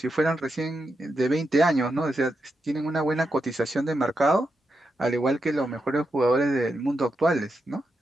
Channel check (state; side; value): normal; both; correlation 0.85